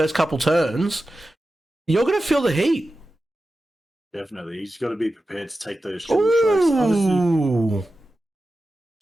couple turns, you're going to feel the heat. Definitely. He's got to be prepared to take those triple strikes. Obviously,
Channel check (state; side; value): normal; both; correlation 0.93